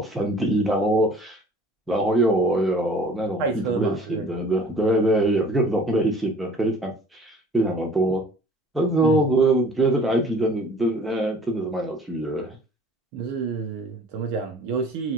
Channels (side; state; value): both; normal; correlation 0.49